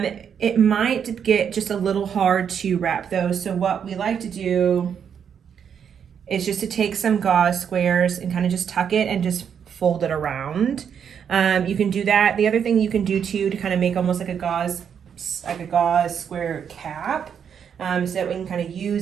might get just a little hard to wrap those. So what we like to do is just to take some gauze squares and kind of just tuck it and just fold it around. You can do that. The other thing you can do too to kind of make almost like a gauze square cap, so that we can kind of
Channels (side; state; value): left; quieter; 7.7 dB